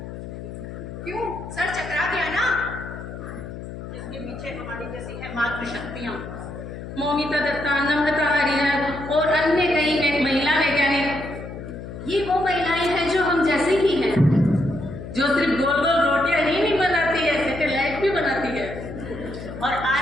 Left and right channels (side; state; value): left; noise; hum, 10 dB below the sound